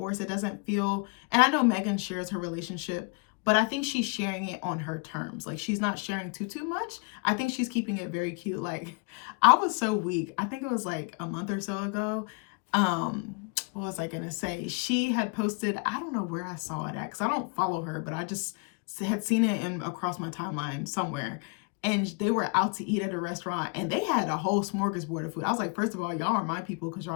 It doesn't feel, and I know Megan shares her relationship, but I think she's sharing it on her terms. Like she's not sharing too much. I think she's keeping it very cute. Like I was so weak. I think it was like a month or so ago. What was I gonna say? She had posted, I don't know where I saw it at because I don't follow her, but I just had seen it in across my timeline somewhere. And they were out to eat at a restaurant and they had a whole smorgasbord of food. I was like, first of all, y'all are my people because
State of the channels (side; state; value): right; quieter; 33.5 dB